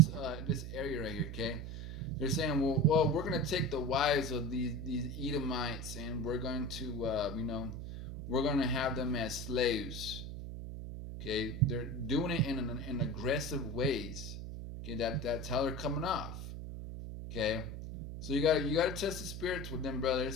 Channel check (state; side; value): noise; right; hum, 8 dB below the sound